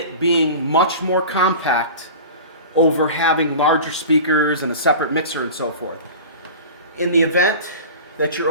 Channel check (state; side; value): inverted; both; correlation -0.35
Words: being much more compact over having larger speakers and a separate mixer and so forth. In the event that